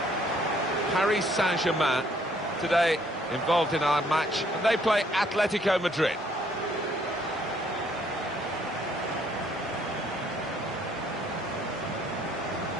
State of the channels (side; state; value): both; normal; correlation 0.65